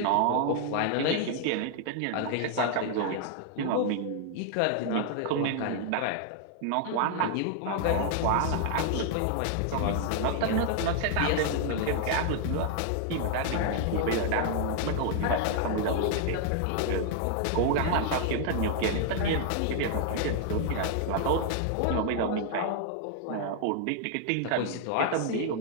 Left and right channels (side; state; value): both; different; correlation 0.00